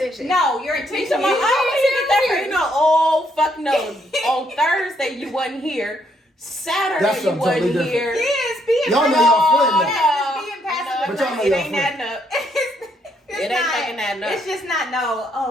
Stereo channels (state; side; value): normal; both; correlation 0.72